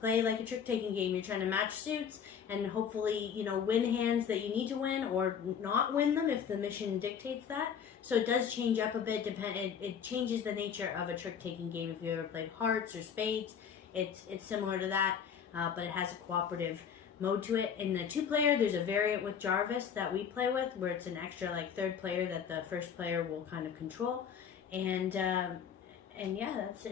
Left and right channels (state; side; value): quieter; right; 7.5 dB